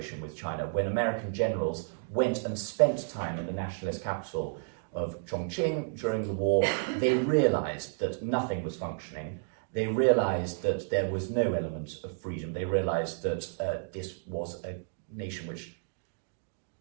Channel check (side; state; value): left; silent; digital silence